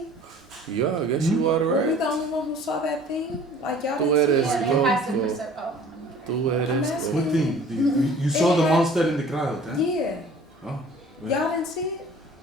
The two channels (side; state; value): both; normal; correlation 0.48